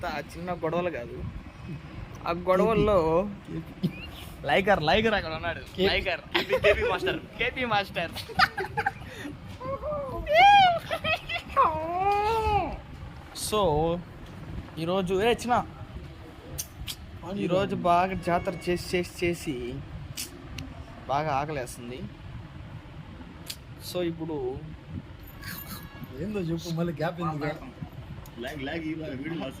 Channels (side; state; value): both; identical; correlation 1.00